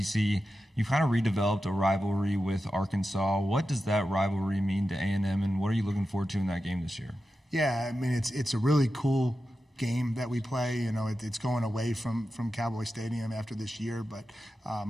you've kind of redeveloped a rivalry with Arkansas. What does that rivalry mean to A&M, and what are you looking forward to in that game this year? Yeah, I mean, it's a really cool game that we play. It's going away from Cowboy Stadium after this year, but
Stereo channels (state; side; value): normal; both; correlation 0.91